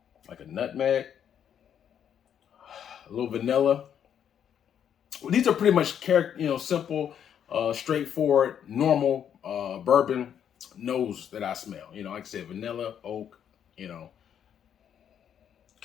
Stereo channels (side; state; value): right; quieter; 8.9 dB